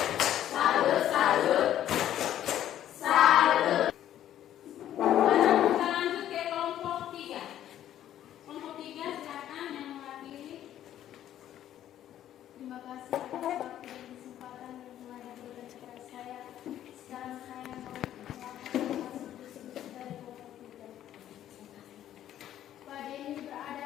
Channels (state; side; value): quieter; right; 11.6 dB